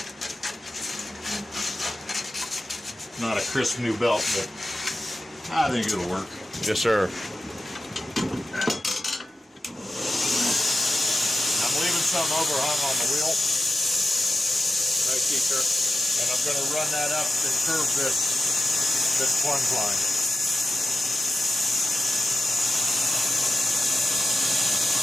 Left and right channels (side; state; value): both; normal; correlation 0.91